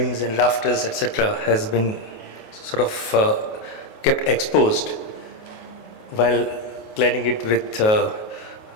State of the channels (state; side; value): late; right; 28 ms